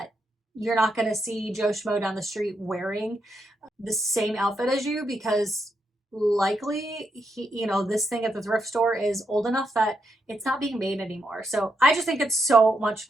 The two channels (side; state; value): both; normal; correlation 0.81